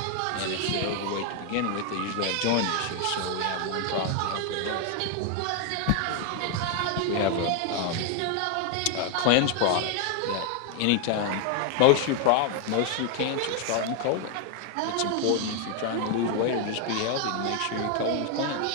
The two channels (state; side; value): different; both; correlation 0.00